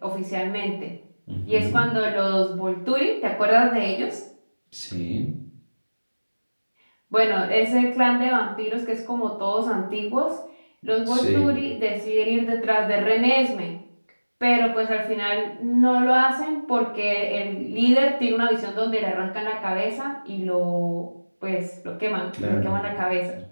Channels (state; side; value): inverted; both; correlation -1.00